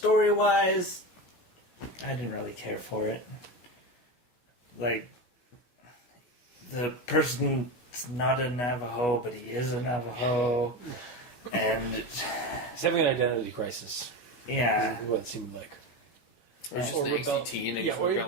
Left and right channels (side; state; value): right; late; 16 ms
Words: I didn't really care for it. Like, the person's not a Navajo, but he is a Navajo, and He's having an identity crisis. yeah, Is what it seemed like. Or just an angsty teen and he's